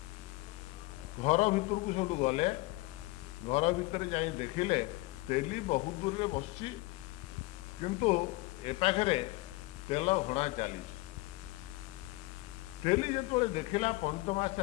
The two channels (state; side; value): quieter; right; 21.3 dB